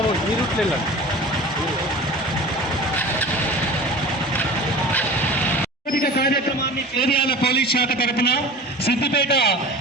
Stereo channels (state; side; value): normal; both; correlation 0.37